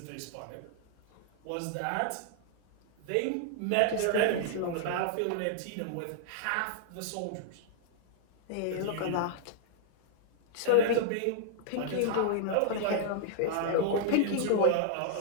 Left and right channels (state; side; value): different; both; correlation -0.01